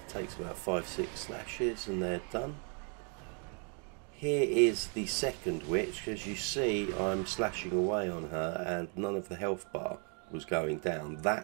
takes about 5-6 slashes and they're done. Here is the second witch. As you see, I'm slashing away on her and none of the health bar was going down.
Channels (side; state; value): left; quieter; 39.6 dB